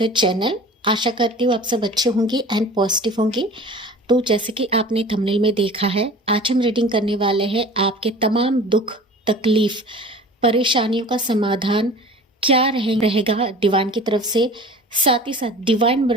channel. आशा करती हूँ आप सब अच्छे होंगे एंड पॉजिटिव होंगे। तो जैसे कि आपने थंबनेल में देखा है, आज हम रीडिंग करने वाले हैं आपके तमाम दुख, तकलीफ, परेशानियों का समाधान क्या रहेगा डिवाइन की तरफ से। साथ ही साथ डिवाइन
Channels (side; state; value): both; normal; correlation 0.41